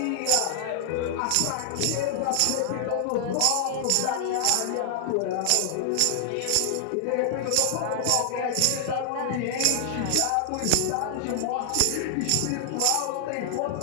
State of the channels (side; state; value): both; different; correlation 0.00